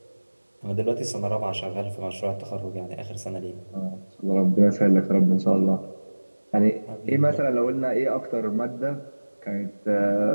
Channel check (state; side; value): inverted; both; correlation -1.00